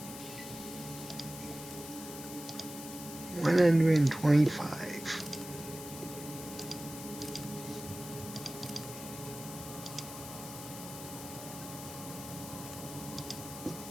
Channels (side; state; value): left; noise; hiss, 11 dB below the sound